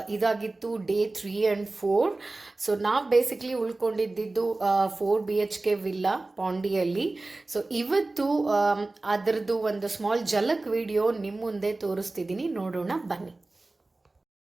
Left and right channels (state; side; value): quieter; left; 3.1 dB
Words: ಇದಾಗಿತ್ತು ಡೇ 3 ಆ್ಯಂಡ್ 4. ಸೊ ನಾವು ಬೇಸಿಕ್ಲಿ ಉಳ್ಕೊಂಡಿದ್ದು 4 BHK ವಿಲ್ಲಾ ಪಾಂಡಿಯಲ್ಲಿ. ಸೊ ಇವತ್ತು ಅದರದ್ದು ಒಂದು ಸ್ಮಾಲ್ ಝಲಕ್ ವಿಡಿಯೋ ನಿಮ್ಮ ಮುಂದೆ ತೋರಿಸ್ತಿದ್ದೀನಿ, ನೋಡೋಣ ಬನ್ನಿ.